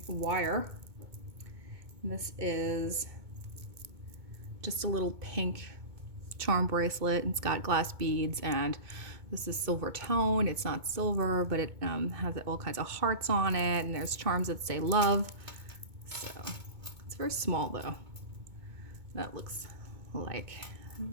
wire. And this is just a little pink charm bracelet, and it's got glass beads, and this is silver tone. It's not silver, but it has all kinds of hearts on it, and there's charms that say love. So it's very small though. That looks like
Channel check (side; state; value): left; late; 2.2 ms